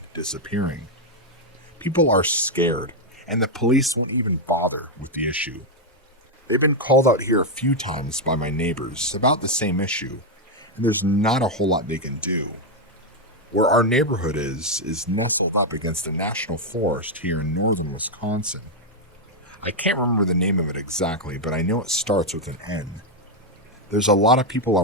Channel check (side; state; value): both; normal; correlation 0.01